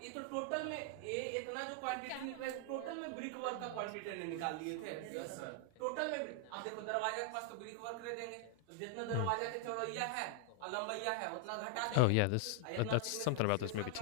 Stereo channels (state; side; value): different; both; correlation 0.00